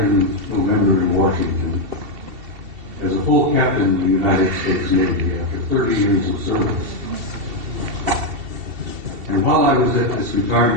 in November in Washington as a full captain in the United States Navy after 30 years of service. And while I was at this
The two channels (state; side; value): late; left; 2.7 ms